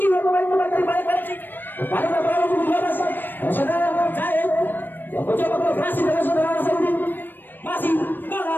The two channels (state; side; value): late; right; 0.093 ms